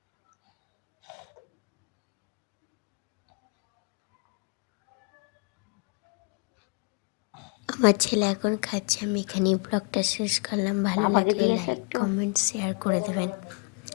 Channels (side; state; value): right; quieter; 33.7 dB